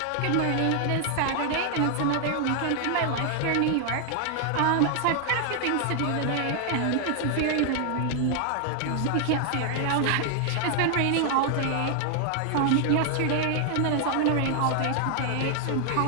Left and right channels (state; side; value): different; both; correlation 0.00